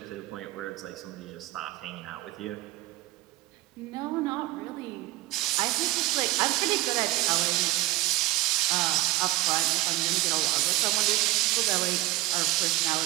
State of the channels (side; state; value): left; quieter; 17.9 dB